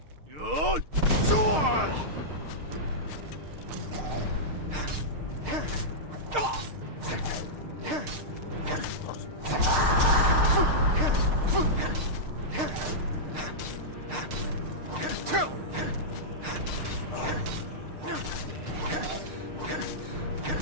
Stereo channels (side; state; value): left; late; 6.6 ms